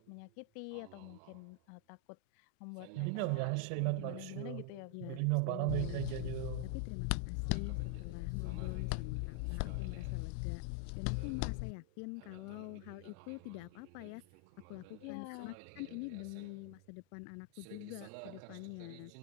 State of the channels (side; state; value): both; different; correlation 0.00